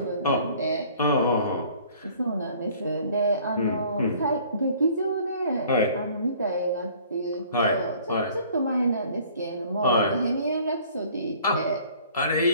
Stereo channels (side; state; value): both; inverted; correlation -0.53